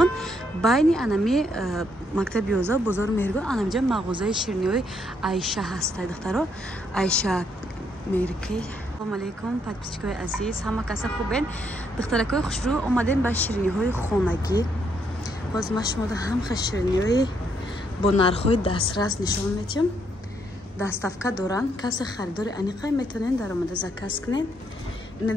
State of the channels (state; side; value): normal; both; correlation 0.74